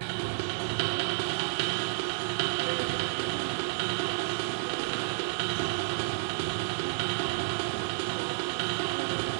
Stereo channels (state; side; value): silent; left; 57 dB below the other